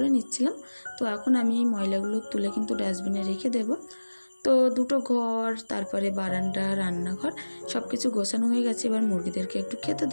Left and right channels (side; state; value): both; inverted; correlation -1.00